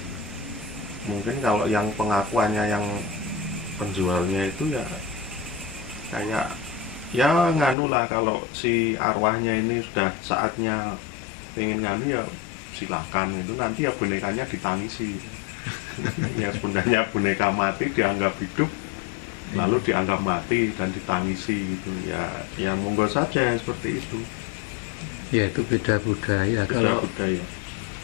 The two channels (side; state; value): right; drops out; at 7.8 s